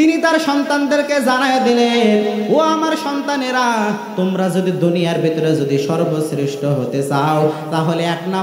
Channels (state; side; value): identical; both; correlation 1.00